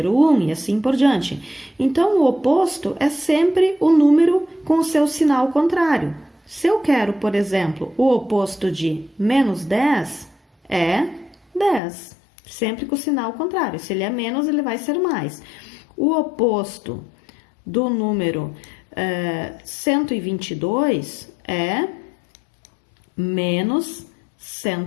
o 1 e assim por diante. Então, o oposto é sempre o número com o seu sinal contrário. Se eu quero, por exemplo, o oposto de menos 10, é 10. Sempre com o sinal contrário. Se ele é menos, ele vai ser mais. O oposto do número 122 é menos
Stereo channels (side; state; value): right; drops out; at 11.8 s